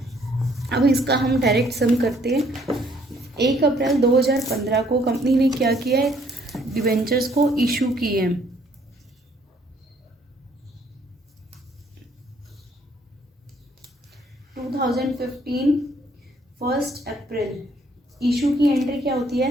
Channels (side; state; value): both; normal; correlation 0.64